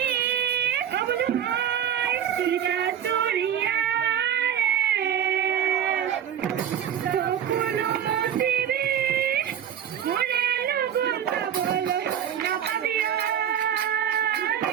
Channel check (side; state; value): left; quieter; 9.3 dB